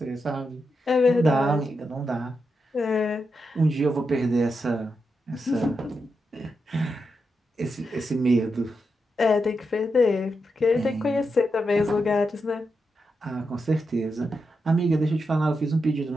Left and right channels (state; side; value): normal; both; correlation 0.86